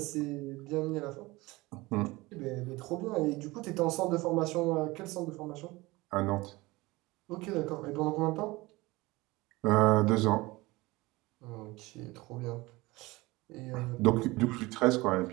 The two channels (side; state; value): left; quieter; 21.4 dB